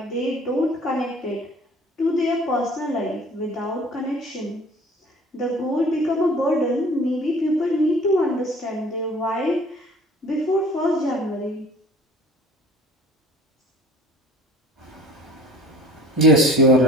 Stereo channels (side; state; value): both; normal; correlation 0.48